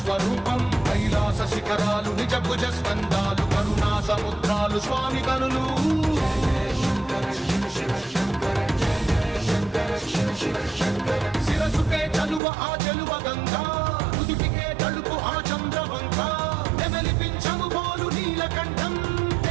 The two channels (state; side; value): drops out; left; at 12.4 s